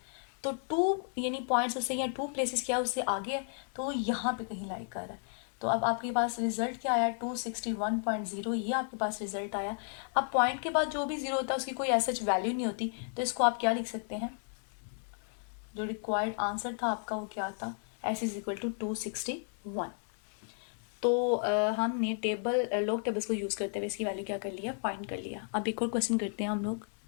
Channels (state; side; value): silent; right; 56 dB below the other